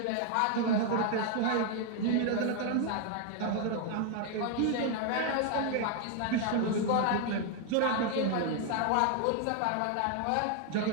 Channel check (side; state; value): both; different; correlation 0.00